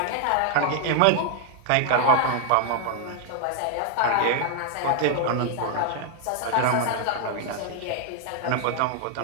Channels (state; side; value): different; both; correlation 0.00